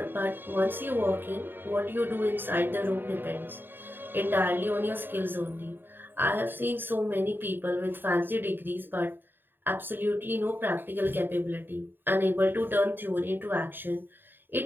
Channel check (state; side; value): late; left; 0.095 ms